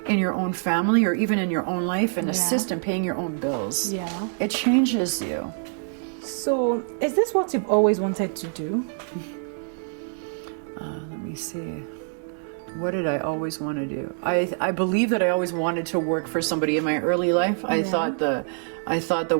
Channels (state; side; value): silent; left; 62 dB below the other